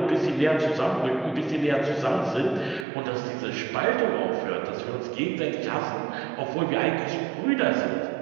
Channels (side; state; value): left; drops out; at 2.9 s